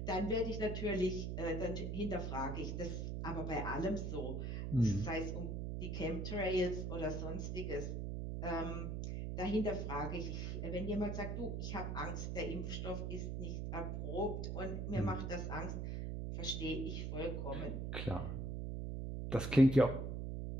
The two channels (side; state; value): right; noise; hum, 2 dB below the sound